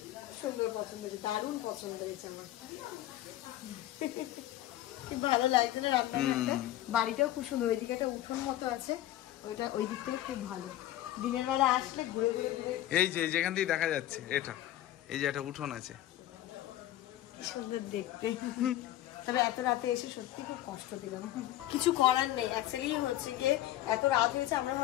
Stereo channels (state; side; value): quieter; right; 14.0 dB